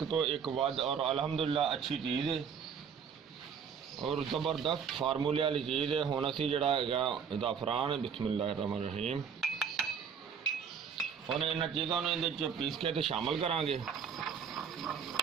ਤੋਂ ਇੱਕ ਵੱਧ ਔਰ ਅਲਹਮਦੁਲਿਲਾ ਅੱਛੀ ਚੀਜ਼ ਹੈ ਔਰ ਜ਼ਬਰਦਸਤ ਫਾਰਮੂਲੇ ਵਾਲੀ ਚੀਜ਼ ਹੈ। ਹੁਣ ਅਸੀਂ ਜਿਹੜਾ ਹੈਗਾ ਜ਼ਾਫਰਾਨ ਬਿਸਮਿल्लाहिर्रहमानिर्रहीम ਹੁਣ ਇਹਨਾਂ ਚੀਜ਼ਾਂ ਨੂੰ ਇਹਦੇ 'ਚ ਪੀਸ ਕੇ ਤੇ ਸ਼ਾਮਲ ਕਰਾਂਗੇ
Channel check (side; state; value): left; quieter; 7.0 dB